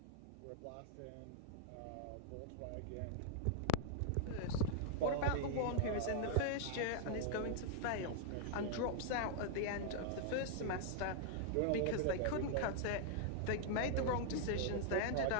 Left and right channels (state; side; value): different; both; correlation -0.01